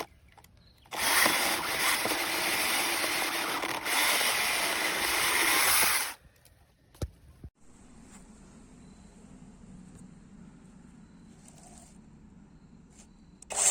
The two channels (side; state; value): both; identical; correlation 1.00